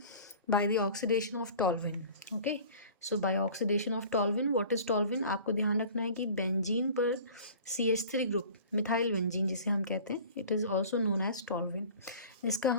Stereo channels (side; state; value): both; inverted; correlation -0.44